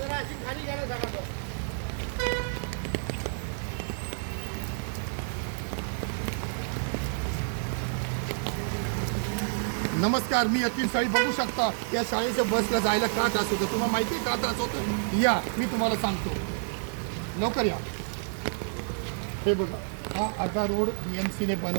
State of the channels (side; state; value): left; silent; digital silence